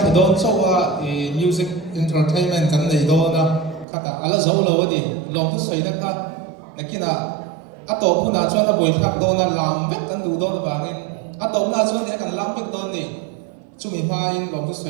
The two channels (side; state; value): left; drops out; at 3.9 s